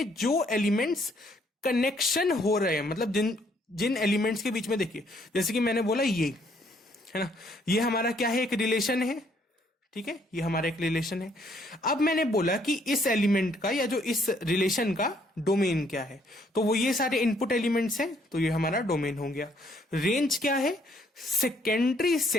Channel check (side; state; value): both; normal; correlation 0.67